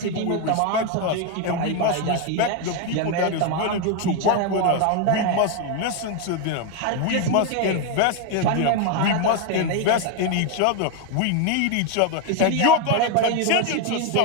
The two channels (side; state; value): both; different; correlation 0.01